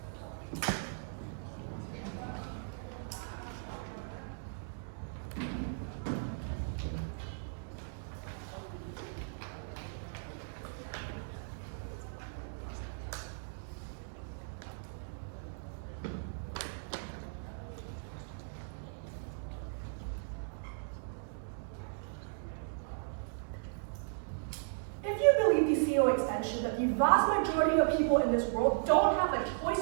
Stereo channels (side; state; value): left; silent; digital silence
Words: Extension that the vast majority of people in this world don't have a choice